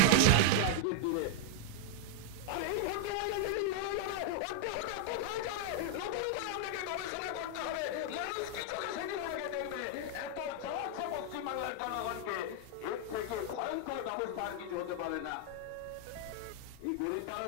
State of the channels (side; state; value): both; different; correlation 0.00